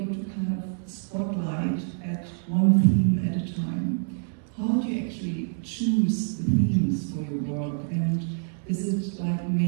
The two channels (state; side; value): silent; left; digital silence